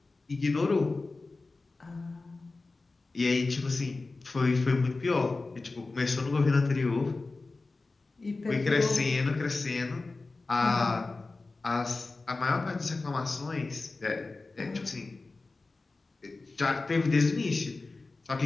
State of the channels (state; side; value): quieter; right; 3.6 dB